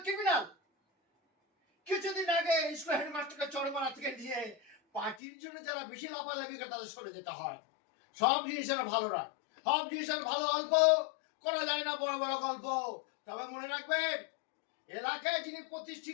ক্রিমিনাল। কিছুদিন আগে স্কুল হেডমাস্টারকে চরমারা থেকে নিয়ে পার্টির জন্য যারা বেশি লাফালাফি করে তাদের সরে যেতে হয়। সব জিনিসের ভালো রাখ, সব জিনিসের ভালো অল্প করা যায় না, বড় বড় গল্প। তবে মনে রাখবেন, এলাকায় যিনি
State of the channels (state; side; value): drops out; right; at 5.2 s